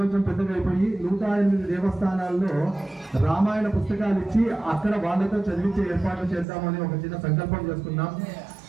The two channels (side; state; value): left; drops out; at 6.5 s